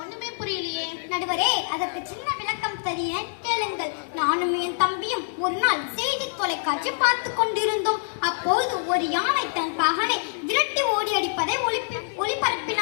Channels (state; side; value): silent; right; digital silence